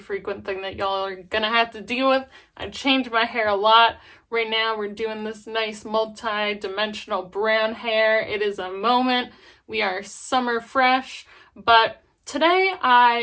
thing that y'all are gonna have to deal with. I change my hair a lot. Right now we're doing this nice multi-dimensional brown hair. It is a moment. We are summer fresh, but today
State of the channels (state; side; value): identical; both; correlation 1.00